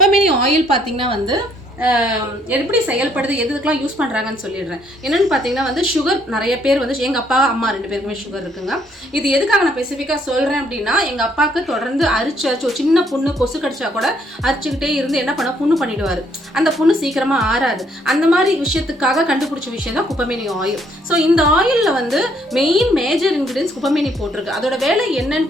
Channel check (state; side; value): normal; both; correlation 0.68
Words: ஆயில் பார்த்தீங்கன்னா வந்து எப்படி செயல்படுது, எதுக்கெல்லாம் யூஸ் பண்ணுறாங்கன்னு சொல்லிடுறேன். என்னென்னு பார்த்தீங்கன்னா வந்து சுகர், நிறைய பேர் வந்து எங்கள் அப்பா அம்மா 2 பேருக்குமே சுகர் இருக்குங்க. இது எதுக்காக நான் ஸ்பெசிஃபிக்காக சொல்கிறேன் அப்படின்னா, எங்கள் அப்பாவுக்கு தொடர்ந்து அரிச்சு ஒரு சின்ன புண்ணு கொசு கடிச்சா கூட அரிச்சுக்கிட்டே இருந்து என்ன பண்ண புண்ணு பண்ணிடுவார். அந்த புண்ணு சீக்கிரமாக ஆறாது. அந்த மாதிரி விஷயத்துக்காக கண்டுபிடிச்ச விஷயம் தான் குப்பைமேனி ஆயில். ஸோ இந்த ஆயிலில் வந்து மேஜர் இன்க்ரீடியன்ஸ் குப்பைமேனி போட்டிருக்கு. அதோட வேலை